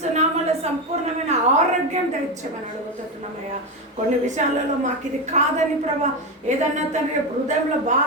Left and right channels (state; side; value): normal; both; correlation 0.14